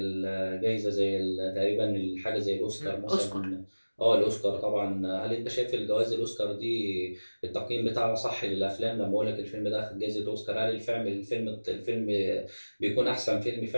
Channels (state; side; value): inverted; both; correlation -1.00